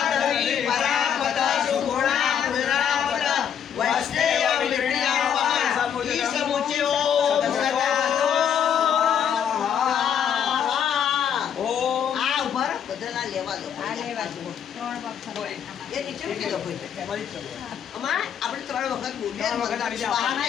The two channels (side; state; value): right; quieter; 8.5 dB